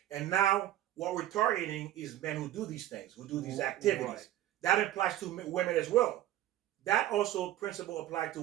And now what we're targeting is men who do these things, who do these activities. Right. That applies to women as well. That also principle applies to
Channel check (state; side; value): quieter; left; 13.5 dB